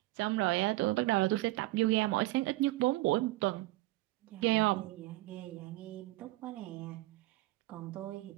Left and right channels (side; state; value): left; quieter; 19.0 dB